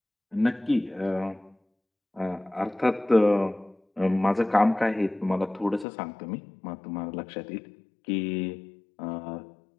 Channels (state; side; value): drops out; right; at 5.9 s